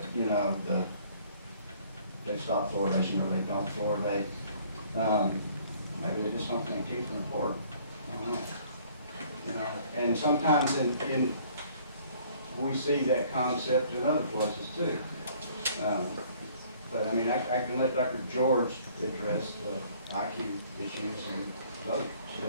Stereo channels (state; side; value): inverted; both; correlation -0.58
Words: you know, they stop fluoridation or they don't fluoridate, maybe they just don't think teeth are important. I don't know. You know, and sometimes we see that concept in other places too. But I mean, I can let Dr. George address the IQ issues and the